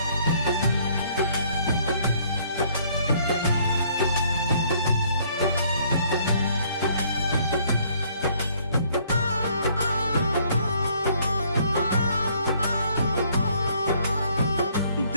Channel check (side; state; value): both; inverted; correlation -0.63